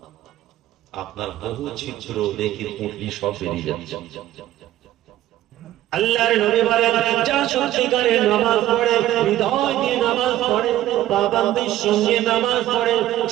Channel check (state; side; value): quieter; left; 13.8 dB